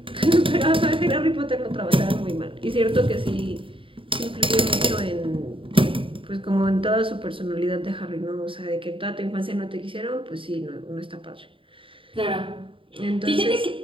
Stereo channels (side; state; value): left; late; 0.25 ms